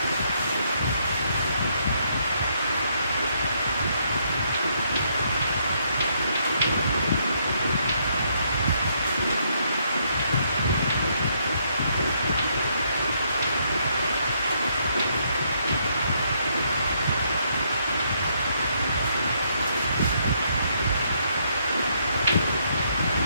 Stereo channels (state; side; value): inverted; both; correlation -0.73